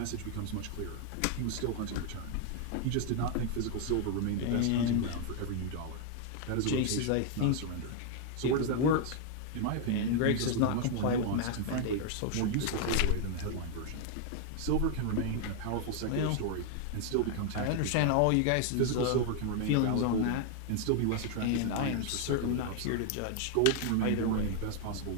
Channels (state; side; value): different; both; correlation 0.00